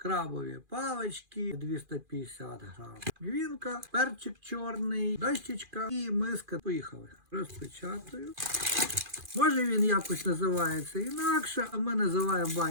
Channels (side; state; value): left; late; 2.4 ms